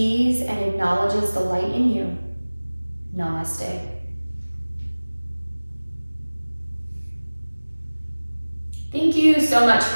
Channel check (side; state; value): both; inverted; correlation -1.00